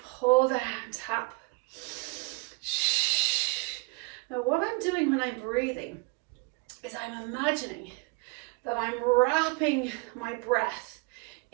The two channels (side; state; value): left; quieter; 28.0 dB